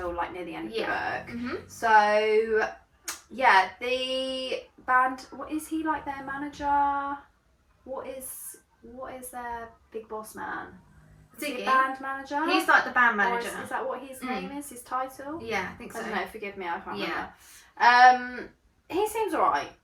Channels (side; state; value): both; identical; correlation 1.00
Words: near the end of the book. So the band. What is he their manager? What is their big boss man? Ziggy. Band manager? He's the band manager. Is that what his name is? His title? Yeah, I think so. I don't know, forgive me, I can't remember. He seems alright.